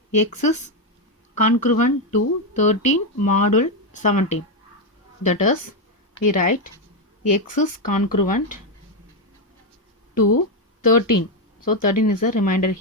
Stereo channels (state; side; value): normal; both; correlation 0.06